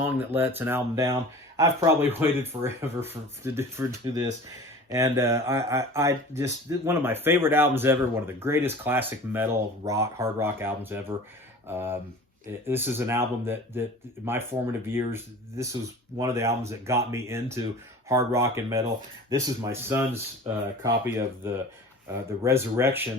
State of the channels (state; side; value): normal; both; correlation 0.40